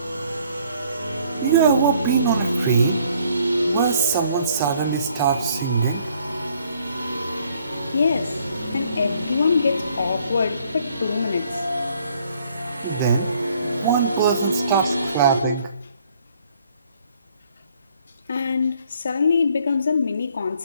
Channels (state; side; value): inverted; both; correlation -0.63